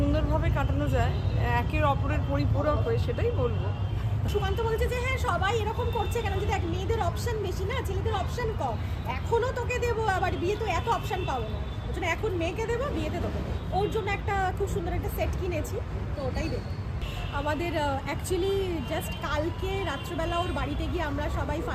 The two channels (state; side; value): identical; both; correlation 1.00